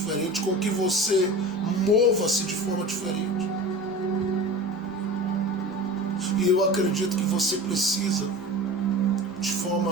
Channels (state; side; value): noise; right; rumble, 28 dB below the sound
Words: com que você mova-se de forma diferente. E eu acredito que você precisa, de